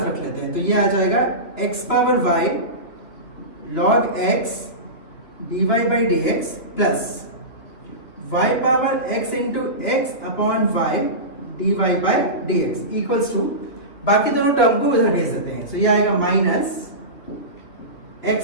रख लेते हैं, तो ये आ जाएगा x power y log x dy by dx plus y power x into x upon y dy by dx equals to, बाकी दोनों टर्म को उधर भेज देते हैं, तो ये आएगा minus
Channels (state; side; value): late; right; 3.0 ms